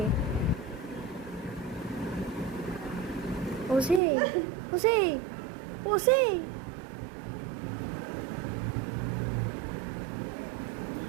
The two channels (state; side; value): drops out; left; at 4.0 s